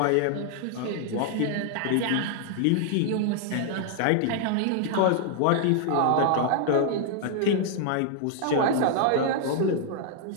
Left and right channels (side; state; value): both; different; correlation 0.00